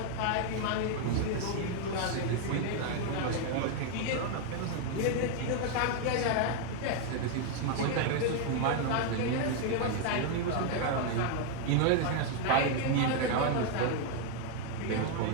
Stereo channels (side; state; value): both; different; correlation 0.01